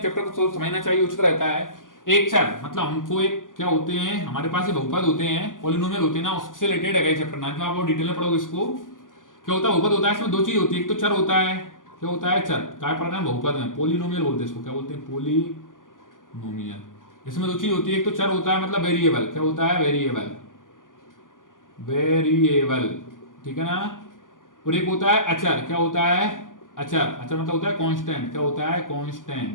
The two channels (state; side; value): late; right; 0.88 ms